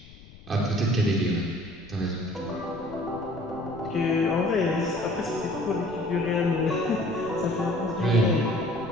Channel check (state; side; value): noise; left; rumble, 20 dB below the sound